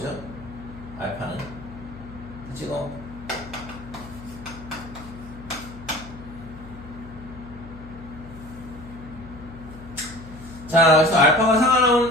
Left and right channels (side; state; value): left; noise; hum, 15 dB below the sound